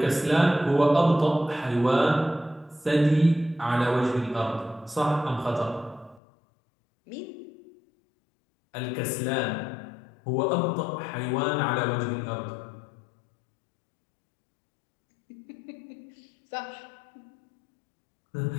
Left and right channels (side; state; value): right; drops out; at 6.2 s